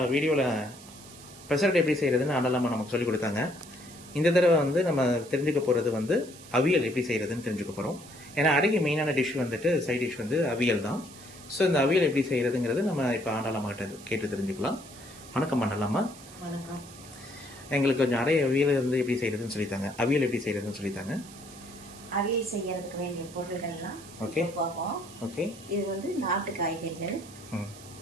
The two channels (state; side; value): noise; right; hiss, 19 dB below the sound